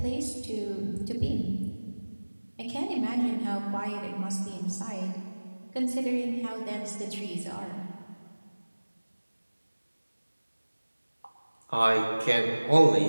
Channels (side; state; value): both; inverted; correlation -1.00